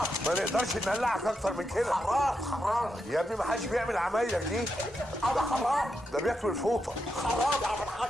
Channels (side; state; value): both; normal; correlation 0.85